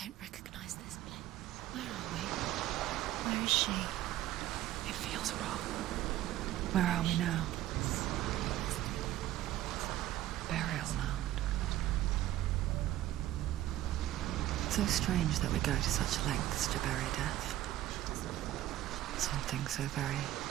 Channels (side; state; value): left; quieter; 14.2 dB